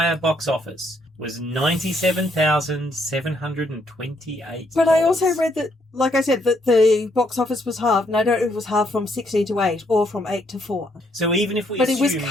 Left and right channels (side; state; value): both; normal; correlation 0.72